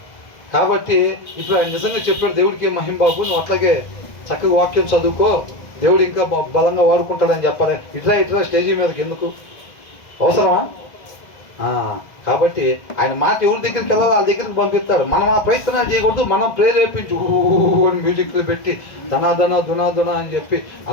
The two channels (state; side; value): late; right; 1.5 ms